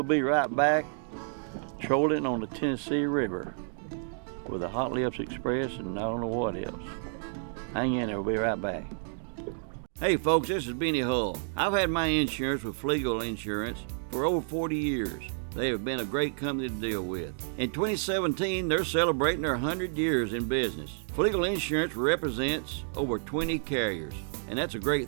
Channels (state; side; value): silent; left; digital silence